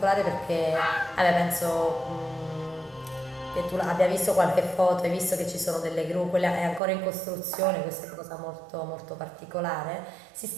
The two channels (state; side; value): drops out; left; at 6.8 s